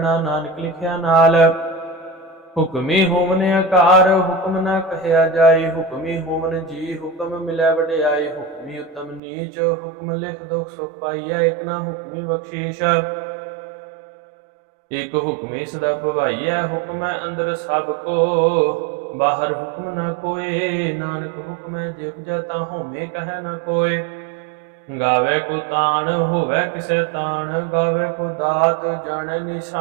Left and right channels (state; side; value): drops out; left; at 9.2 s